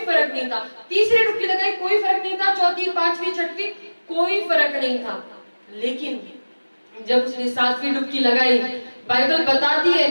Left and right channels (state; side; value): inverted; both; correlation -1.00